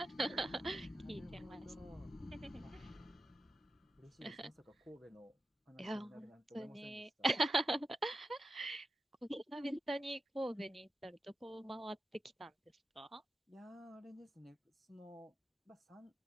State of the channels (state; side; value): normal; both; correlation 0.90